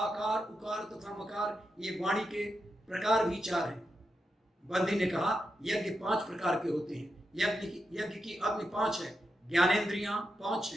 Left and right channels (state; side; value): normal; both; correlation 0.87